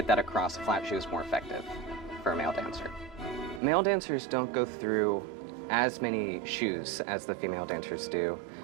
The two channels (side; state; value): left; drops out; at 3.6 s